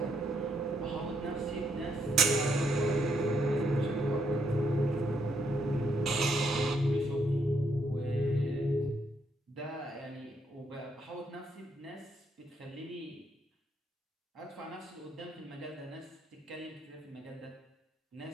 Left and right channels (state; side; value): normal; both; correlation 0.74